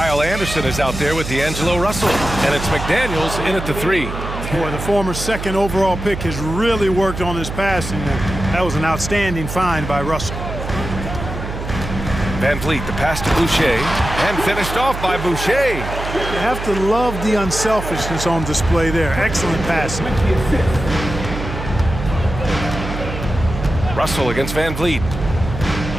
Anderson is out there with D'Angelo Russell. And it's McDaniels in at the 3. Boy, the former second overall pick has really worked on his passing. That was an outstanding find by Russell. Van Vliet, the pass to Boucher, and finished off by Boucher. You have to love the unselfishness on display there. Excellent passing. Russell against Van Vliet.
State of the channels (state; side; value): noise; right; hum, 7 dB below the sound